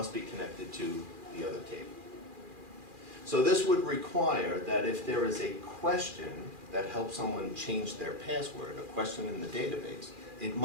be connected to the other table. So this would require that if there is a question that helps someone change their password, a question in the database, it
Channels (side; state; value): left; late; 2.4 ms